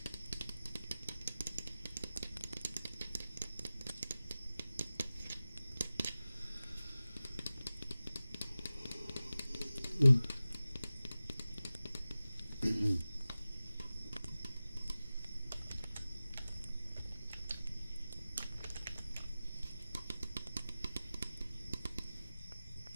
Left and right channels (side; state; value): both; inverted; correlation -0.96